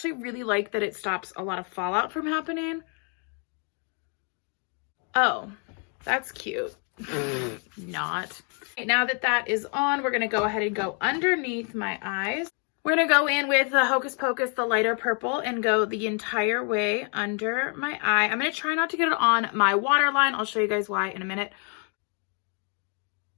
really like that it stops a lot of fallout from happening. Oh, that's cute. Not. Okay, now that that is on, we're gonna go ahead and go underneath my eyes. We're gonna go in with the Hocus Pocus, the lighter purple, and go the entire way under my eye. I'm gonna try not to get it on my waterline. I'll show you guys why in a minute.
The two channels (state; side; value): quieter; right; 39.4 dB